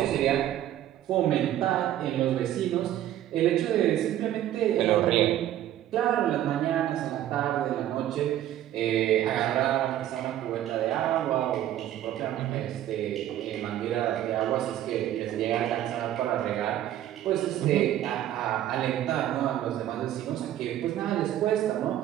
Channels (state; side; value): quieter; left; 12.3 dB